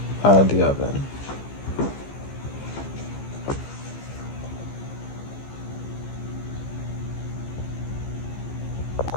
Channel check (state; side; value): late; right; 15 ms